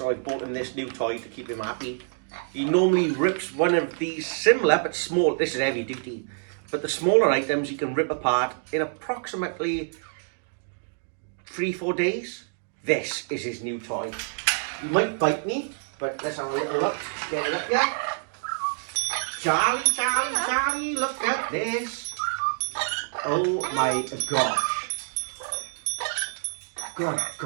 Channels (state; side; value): silent; left; digital silence